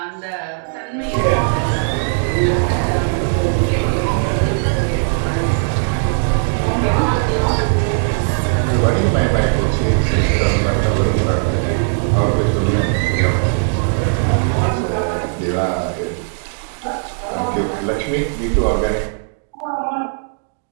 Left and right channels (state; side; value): silent; left; digital silence